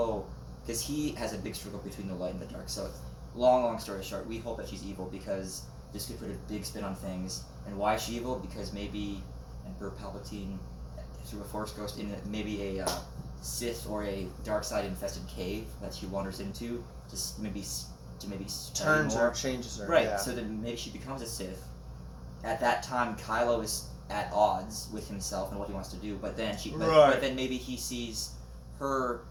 Because he has a big struggle between the light and the dark. So, long story short, we hope that she's evil because this could put a big spin on things. And why is she evil? Because maybe Emperor Palpatine, through a Force ghost, in maybe a Sith or a dark side infested cave that she wanders into, just maybe turns her, changes her. Right. Yeah. So then maybe she becomes a Sith. At that time, Kylo is at odds with himself and what he wants to do. But then but then maybe he sees her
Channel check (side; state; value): both; identical; correlation 1.00